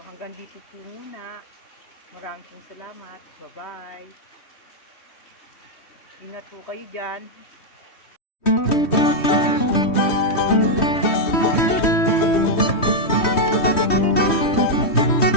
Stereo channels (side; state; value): right; late; 3.1 ms